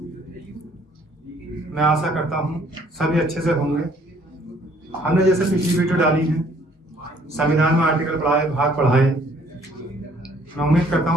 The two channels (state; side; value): normal; both; correlation 0.61